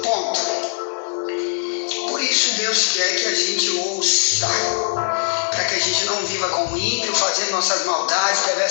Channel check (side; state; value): right; silent; digital silence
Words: Ponto. Por isso Deus quer que a gente ouça, para que a gente não viva como ímpio, fazendo nossas maldades,